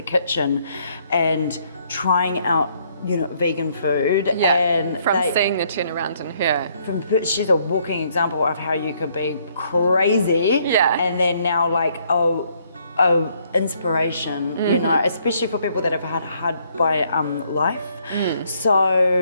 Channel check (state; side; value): inverted; both; correlation -0.68